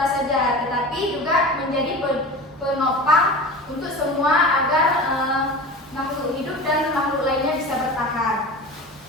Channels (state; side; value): normal; both; correlation 0.33